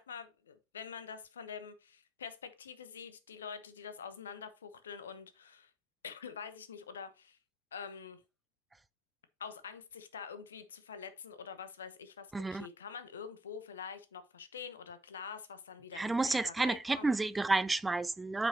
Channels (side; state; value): both; normal; correlation 0.76